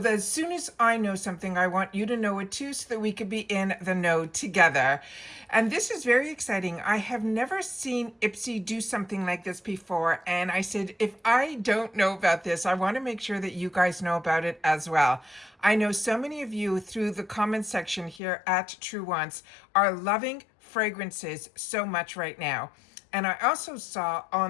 as soon as I know something, I want you to know it too so that we could be in the know together. And this is very exciting. I have never seen IPSY do something like this before, and I said, if I don't know about this, I want to make sure that you guys know about it as well. I know so many of you through the comment section here at TrueWants are loving fragrances so much right now. And I also saw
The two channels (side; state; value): right; drops out; at 18.2 s